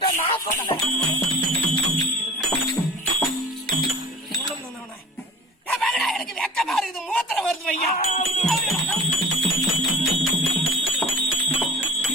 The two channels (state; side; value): normal; both; correlation 0.40